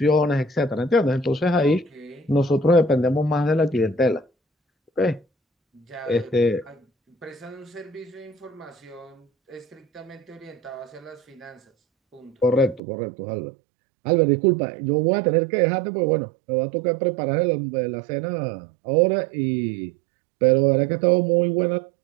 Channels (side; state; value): left; drops out; at 12.8 s